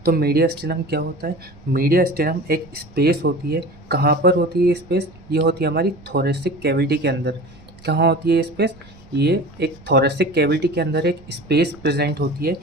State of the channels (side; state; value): right; noise; rumble, 24 dB below the sound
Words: तो मीडिया स्टेनम क्या होता है? मीडिया स्टेनम एक स्पेस होती है। कहाँ पर होती है ये स्पेस? ये होती है हमारी थोरेसिक कैविटी के अंदर। कहाँ होती है ये स्पेस? ये एक थोरेसिक कैविटी के अंदर एक स्पेस प्रेजेंट होती है,